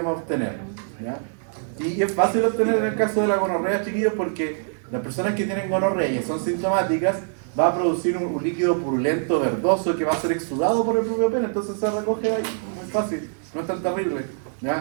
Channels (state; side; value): silent; left; digital silence